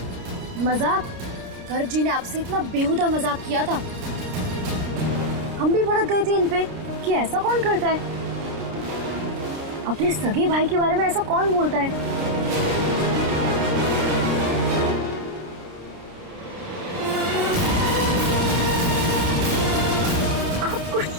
मजाक। गर्ग जी ने आपसे इतना बेहुदा मजाक किया था, हम भी भड़क गए थे इन पे कि ऐसा कौन करता है। अपने सगे भाई के बारे में ऐसा कौन बोलता है? आपको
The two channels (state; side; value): late; left; 29 ms